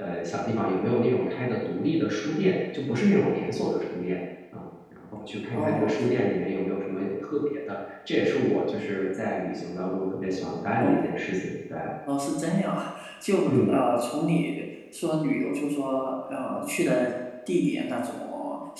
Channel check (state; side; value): identical; both; correlation 1.00